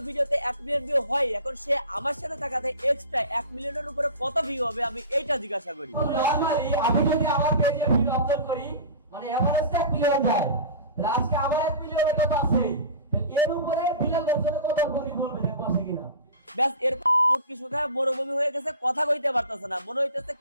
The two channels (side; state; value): both; inverted; correlation -0.35